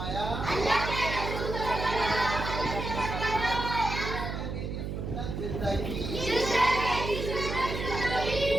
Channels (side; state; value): right; noise; hum, 4 dB below the sound